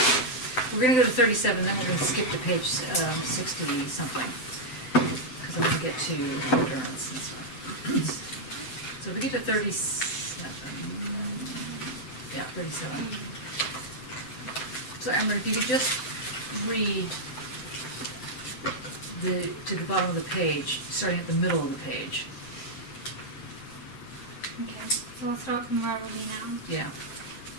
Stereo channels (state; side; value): late; right; 7.9 ms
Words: we're gonna go to 37, then we're gonna skip to page 60 something, because I'm gonna get to endurance and stuff. So if we get to 37, yeah, 37. So Amber, if you could just read to the bottom of the page, starting at the middle of the page. Okay, so I'll start from where are we now? Yeah.